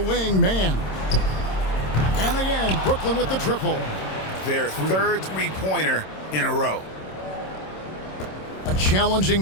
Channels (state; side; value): late; right; 26 ms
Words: man. And again, Brooklyn with the triple. Their 3rd three-pointer in a row. A